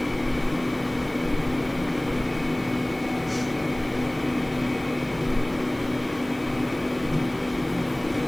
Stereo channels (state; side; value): noise; left; hiss, 26 dB below the sound